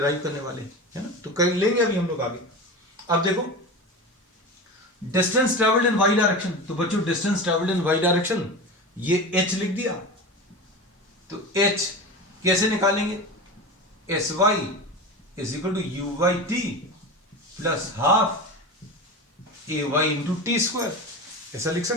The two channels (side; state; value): both; normal; correlation 0.28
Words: करने वाले हैं, है ना। तो कर लेंगे अभी हम लोग आगे। अब देखो distance travelled in y direction, तो बच्चों distance travelled in y direction ये h लिख दिया। तो h कैसे निकालेंगे? sy is equal to u by t plus half a y into t square, ऐसा लिख